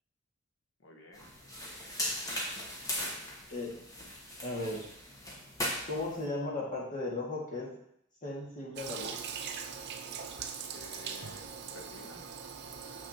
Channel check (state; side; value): normal; both; correlation 0.12